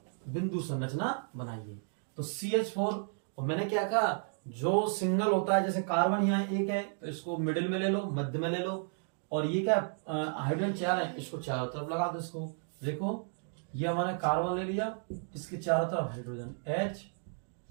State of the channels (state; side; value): silent; left; 56 dB below the other